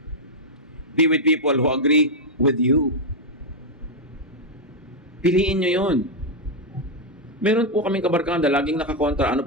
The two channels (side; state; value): both; normal; correlation -0.01